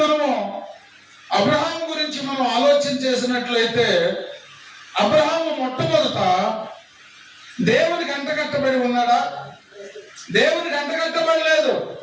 మనము అబ్రహాము గురించి మనం ఆలోచన చేసినట్లయితే, అబ్రహాము మొట్టమొదట దేవునికి అంటకట్టబడి ఉన్నాడా? దేవునికి అంటకట్టబడలేదు.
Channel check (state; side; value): identical; both; correlation 1.00